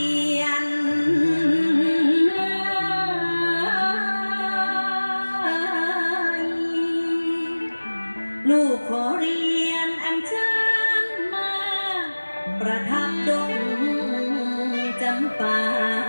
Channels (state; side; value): inverted; both; correlation -1.00